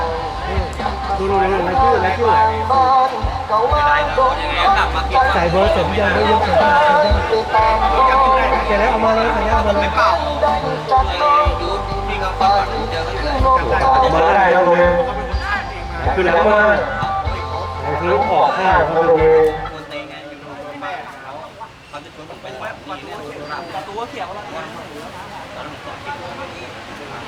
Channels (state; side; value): identical; both; correlation 1.00